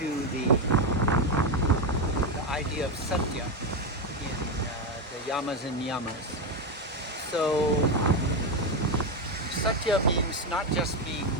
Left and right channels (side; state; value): both; normal; correlation 0.09